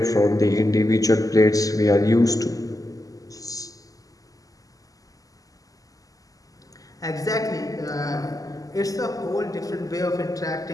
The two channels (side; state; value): right; late; 0.17 ms